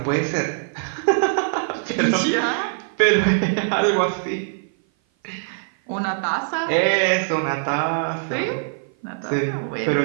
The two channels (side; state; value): left; silent; 56 dB below the other